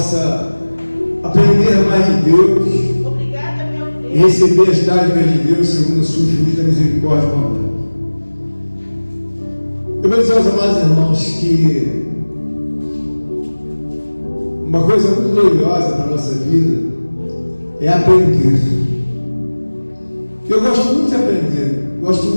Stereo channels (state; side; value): inverted; both; correlation -1.00